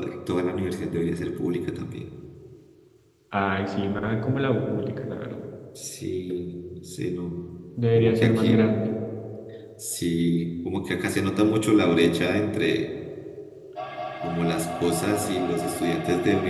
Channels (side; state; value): both; identical; correlation 1.00